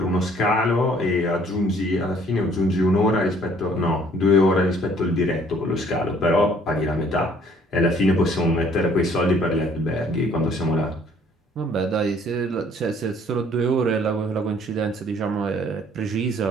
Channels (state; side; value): normal; both; correlation 0.59